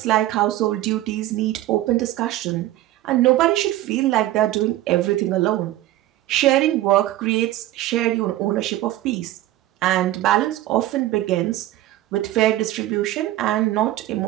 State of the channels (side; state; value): left; quieter; 15.1 dB